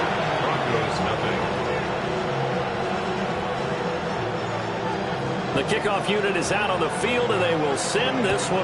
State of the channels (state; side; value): identical; both; correlation 1.00